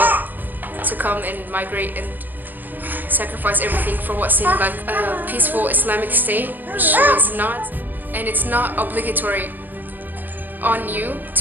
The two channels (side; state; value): left; late; 0.087 ms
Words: to come and migrate and sacrifice everything for what seemed like a peaceful Islamic state, which was not. And it's not obligatory on you